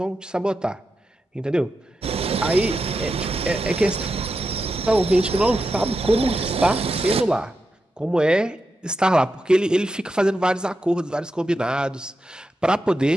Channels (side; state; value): both; normal; correlation 0.88